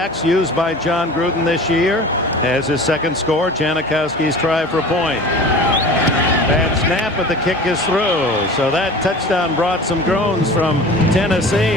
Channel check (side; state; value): both; normal; correlation 0.39